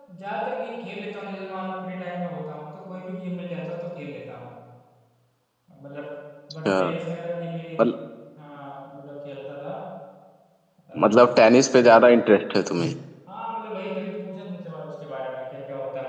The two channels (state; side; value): identical; both; correlation 1.00